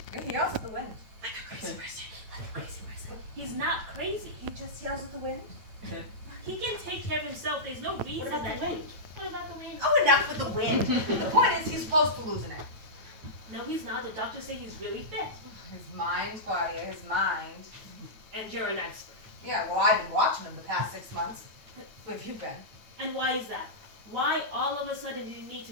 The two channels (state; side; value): late; left; 9.0 ms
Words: Yeah, he yells at the wind. Like a crazy person. Like a crazy person. He's not crazy. He just yells at the wind. He can take care of himself. There's no reason What about that. the wind? What about the wind? Oh, enough with the wind. The point is, he's close to losing it. No, he's not. The doctors say he's really fit. His mind, Claudia, his mind. And you're an expert. Yeah, well, I've been watching him the past 6 months. Who have you been? And why is that? Why all of a sudden do you need to